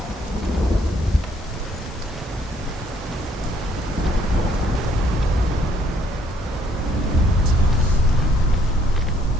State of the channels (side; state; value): both; normal; correlation 0.66